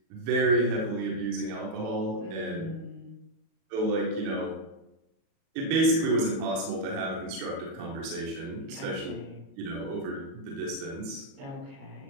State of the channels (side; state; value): left; late; 37 ms